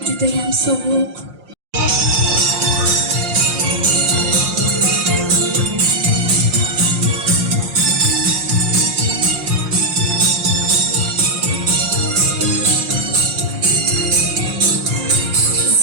Juda ham sovuq.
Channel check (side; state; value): left; late; 5.6 ms